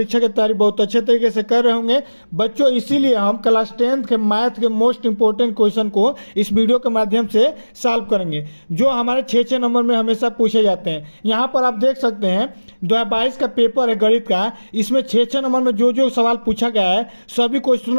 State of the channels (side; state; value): both; inverted; correlation -1.00